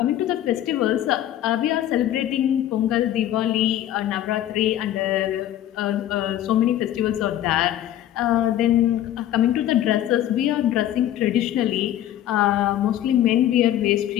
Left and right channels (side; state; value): right; quieter; 12.3 dB